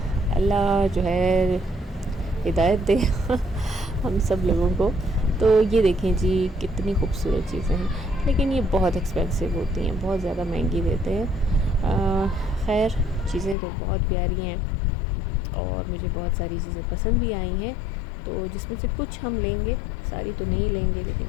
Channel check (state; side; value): drops out; right; at 13.6 s